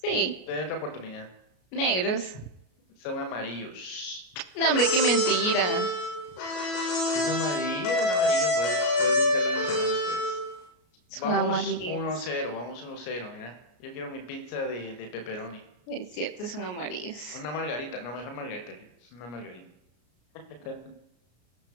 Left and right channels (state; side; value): late; right; 33 ms